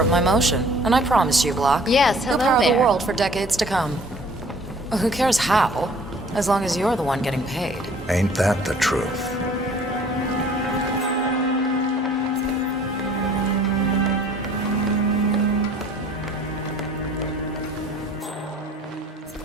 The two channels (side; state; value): both; normal; correlation 0.53